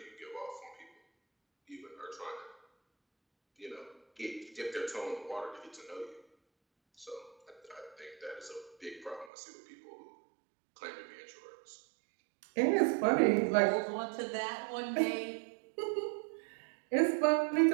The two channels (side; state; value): left; drops out; at 9.3 s